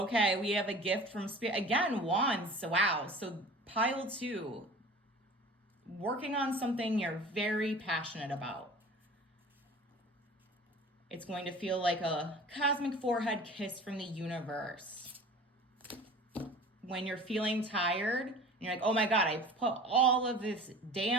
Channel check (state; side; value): normal; both; correlation 0.41